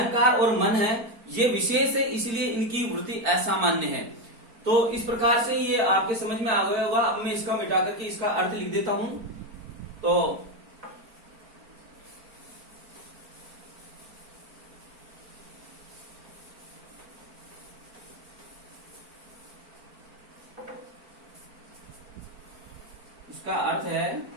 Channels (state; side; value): late; left; 4.5 ms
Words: और मन है ये विशेष है, इसलिए इनकी वृत्ति असामान्य है। तो इस प्रकार से ये आपके समझ में आ गया होगा। अब मैं इसका मिटा करके इसका अर्थ लिख देता हूं। तो इसका अर्थ है